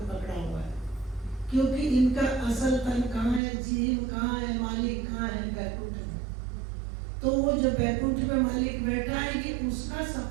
पकड़ा हुआ है। क्योंकि इनका असल तन कहाँ है, जीव कहाँ है, मालिक कहाँ है, बैकुंठ में। तो वो जो बैकुंठ में मालिक बैठा है ये उसका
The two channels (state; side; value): drops out; left; at 3.4 s